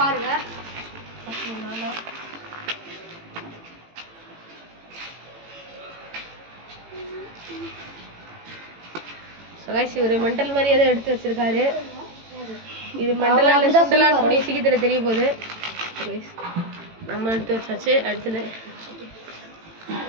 பாருங்க. கைஸ் இவரு மெண்டல் மாதிரி ஏதோ எடுத்து வச்சிருக்காரு. இது மெண்டலா இல்ல சுண்டலா கூடிய சீக்கிரத்துல தெரிய போகுது. கைஸ் நம்ம எடுத்து வச்சாச்சு. அடுத்தது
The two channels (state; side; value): late; left; 18 ms